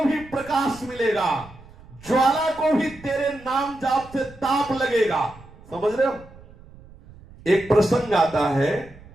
भी प्रकाश मिलेगा, ज्वाला को भी तेरे नाम जाप से ताप लगेगा। समझ रहे हो? एक प्रसंग आता है,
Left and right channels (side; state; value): right; noise; rumble, 22 dB below the sound